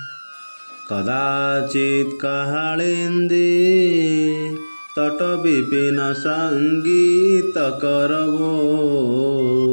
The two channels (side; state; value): both; inverted; correlation -1.00